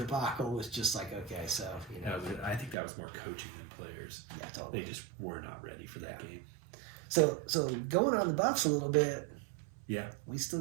was just like, okay, so you know. I think that was more coaching than players. Yeah, totally. They just were not ready for that game. So going on the Buffs a little bit. Yeah. We still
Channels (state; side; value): drops out; left; at 2.8 s